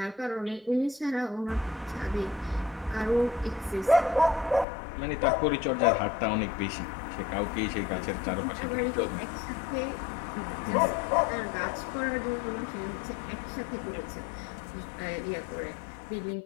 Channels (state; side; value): drops out; right; at 4.7 s